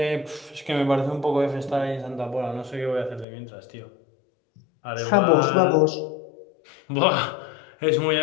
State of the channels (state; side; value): drops out; right; at 3.2 s